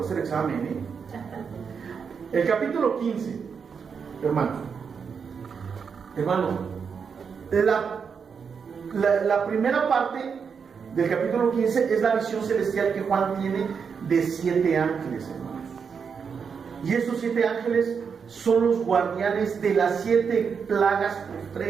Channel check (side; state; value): left; quieter; 6.2 dB